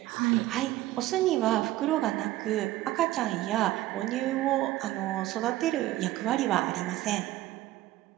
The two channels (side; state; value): left; quieter; 15.9 dB